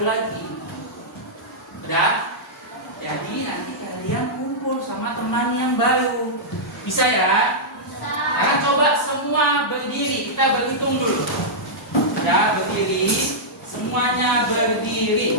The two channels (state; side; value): normal; both; correlation -0.10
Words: lagi. Udah? Jadi nanti kalian kumpul sama teman yang baru. Bisa ya? Sekarang coba semua berdiri. Kita berhitung dulu. Ya, berdiri. Semuanya